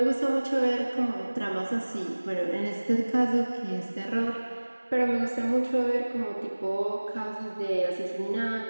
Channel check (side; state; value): both; inverted; correlation -1.00